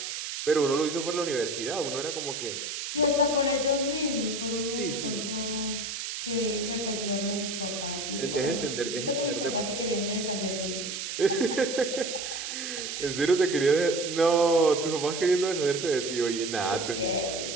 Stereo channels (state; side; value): noise; right; hiss, 5 dB below the sound